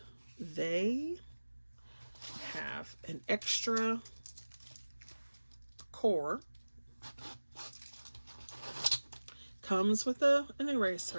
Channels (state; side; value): inverted; both; correlation -1.00